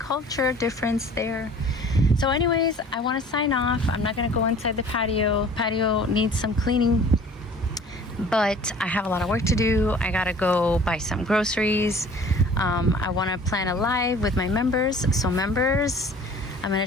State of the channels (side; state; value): both; normal; correlation 0.48